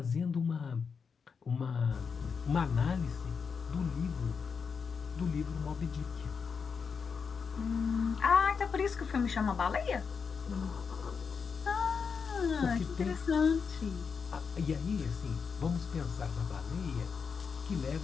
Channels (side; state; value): right; quieter; 5.8 dB